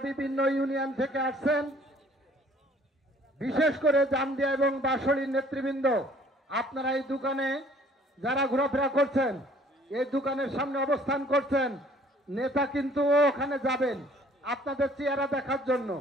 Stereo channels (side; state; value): both; normal; correlation 0.57